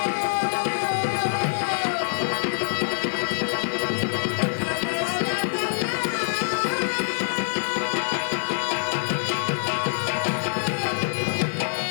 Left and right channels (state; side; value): silent; right; digital silence